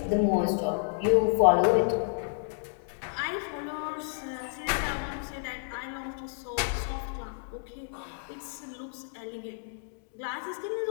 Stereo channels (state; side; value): silent; right; digital silence